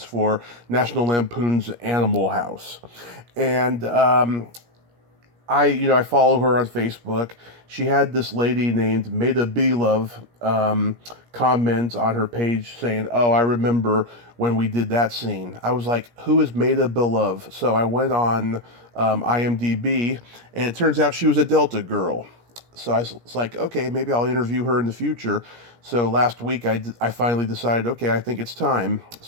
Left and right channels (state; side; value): late; left; 17 ms